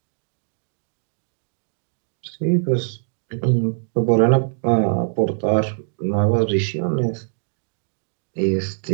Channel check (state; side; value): silent; left; digital silence